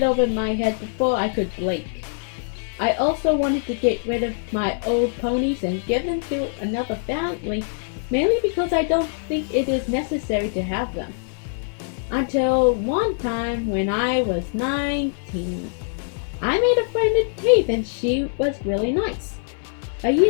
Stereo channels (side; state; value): right; silent; digital silence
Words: over my head before I could blink. I also wanted to get rid of my old ponies and give them to another family, mainly because I don't think it is necessary to have them. Until one time when I was 19. I made a friend in TAFE and she was really nice. A